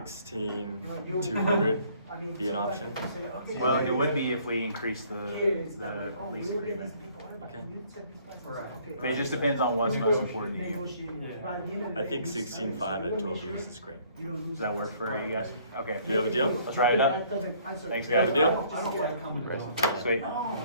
be an option? Well, it would be if we increase the lease agreement. Okay. But it just depends on what's most important to you. I think 16.5 at 12 years is great. Does that work for you guys? Okay. Do you have a deal? Let's write it up. Thanks, We have a guys. deal? Sweet.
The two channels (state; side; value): inverted; both; correlation -0.60